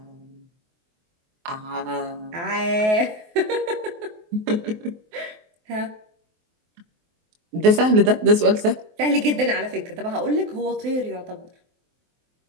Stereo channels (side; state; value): left; late; 23 ms